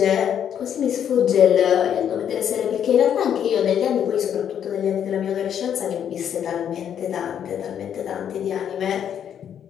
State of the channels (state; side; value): quieter; right; 9.1 dB